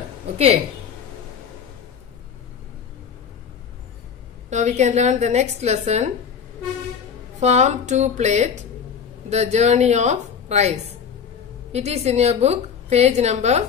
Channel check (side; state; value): right; quieter; 7.1 dB